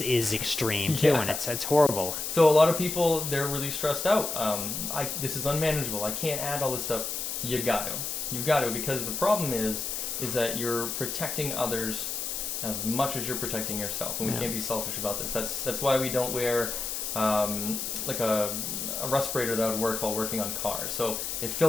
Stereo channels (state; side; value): noise; left; hiss, 3 dB below the sound